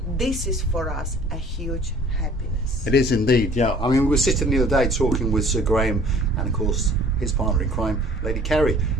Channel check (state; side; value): normal; both; correlation 0.52